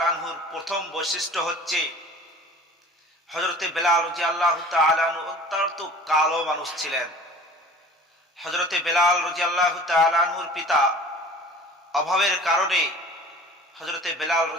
আনহুর প্রথম বৈশিষ্ট্য হচ্ছে, হযরতে বেলাল রাদিয়াল্লাহু তাআলা আনহু অত্যন্ত কালো মানুষ ছিলেন। হযরতে বেলাল রাদিয়াল্লাহু তাআলা আনহুর পিতা অভাবের কারণে হযরতে বেলাল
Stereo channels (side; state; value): both; normal; correlation 0.45